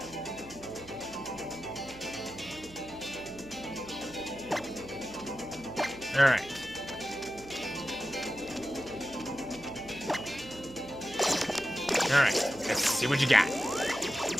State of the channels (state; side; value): noise; right; hum, 19 dB below the sound